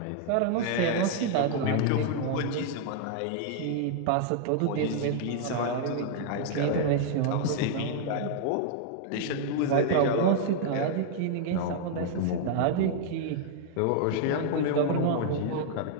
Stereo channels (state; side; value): different; both; correlation 0.00